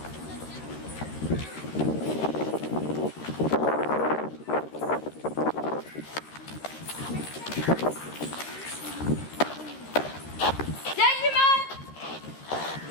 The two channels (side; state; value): right; late; 13 ms